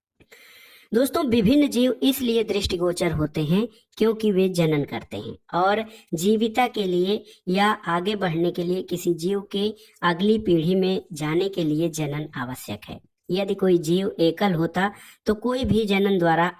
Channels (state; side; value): identical; both; correlation 1.00